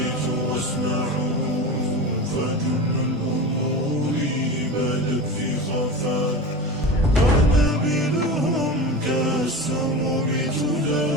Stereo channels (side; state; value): both; normal; correlation 0.28